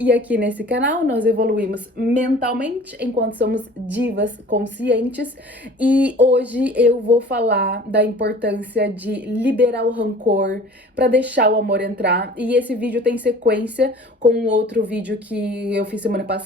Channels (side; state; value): both; normal; correlation 0.46